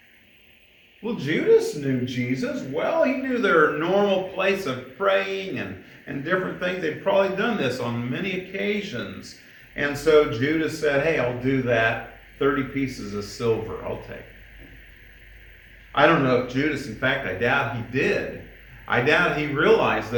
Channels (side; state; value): both; identical; correlation 1.00